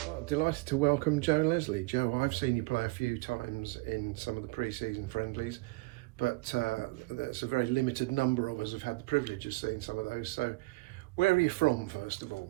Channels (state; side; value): quieter; left; 25.0 dB